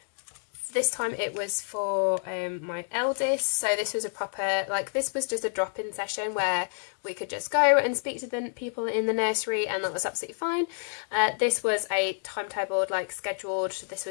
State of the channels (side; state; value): right; silent; digital silence